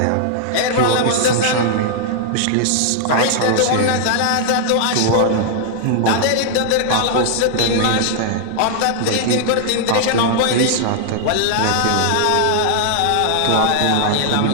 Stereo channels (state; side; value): different; both; correlation -0.01